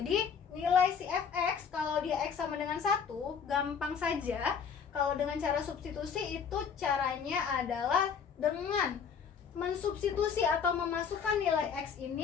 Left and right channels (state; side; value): quieter; right; 6.7 dB